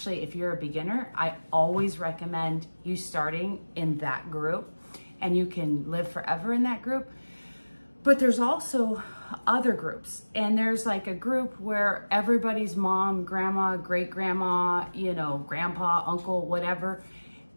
if you're a beginner, I always recommend you starting in that group, and you can live forever in that group. But there's also other groups, and there's like a group where everybody's mom, grandma, great grandma, grandpa, uncle, whatever,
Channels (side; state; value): both; inverted; correlation -1.00